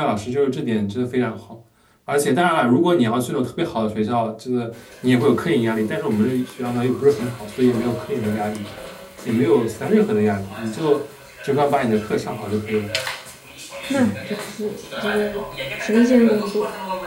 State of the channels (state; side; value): identical; both; correlation 1.00